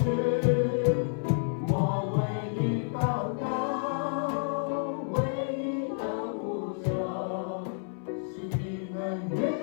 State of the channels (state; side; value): silent; right; 58 dB below the other